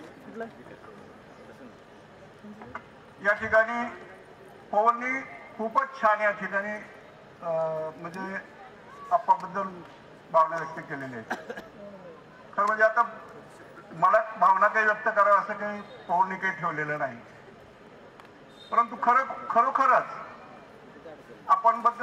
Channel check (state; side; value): identical; both; correlation 1.00